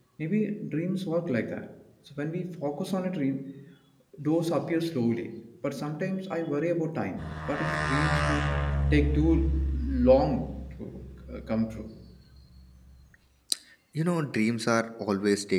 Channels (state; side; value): identical; both; correlation 1.00